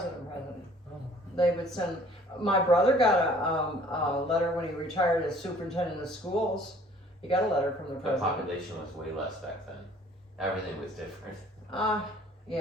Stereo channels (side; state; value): both; normal; correlation 0.55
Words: Oh. They would send. My brother got a letter when he retired as superintendent of schools. He got a letter from the The president. population was way less back then. Everything was different. Yeah,